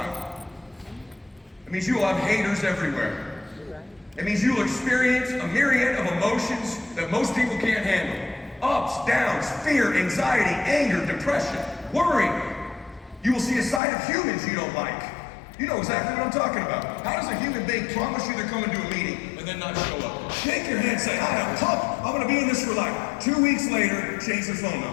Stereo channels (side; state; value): right; drops out; at 13.8 s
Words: It means you will have haters everywhere. It means you will experience a myriad of emotions that most people can't handle. Ups, downs, fear, anxiety, anger, depression, worry. You will see a side of humans you don't like. You know exactly what I'm talking about. How does a human being promise you they're coming to a meeting and then not show up? Think your hand and say, I am pumped. I'm going to be in this for life. 2 weeks later, change your phone